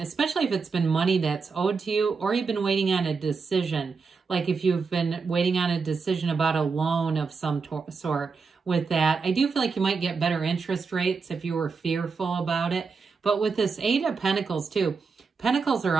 if it's been money that's owed to you or you've been waiting on a decision. Like if you've been waiting on a decision about a loan of some sort with that. I do feel like you might get better interest rates if you were fearful about it. But with this 8 of Pentacles too, Pentacles are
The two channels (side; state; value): left; quieter; 5.0 dB